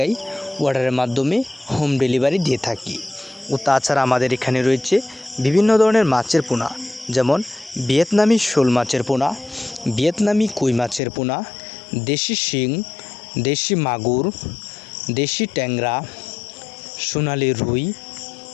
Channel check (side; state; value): right; drops out; at 11.0 s